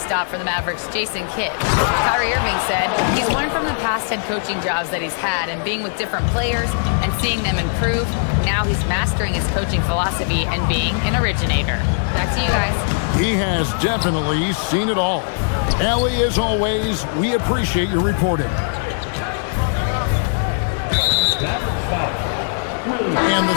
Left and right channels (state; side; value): silent; right; digital silence